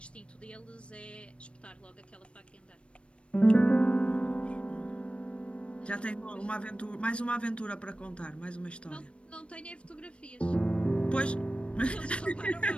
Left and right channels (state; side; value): late; right; 0.059 ms